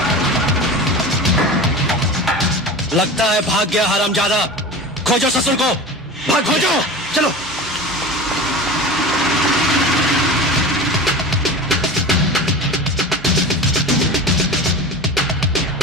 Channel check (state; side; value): normal; both; correlation 0.32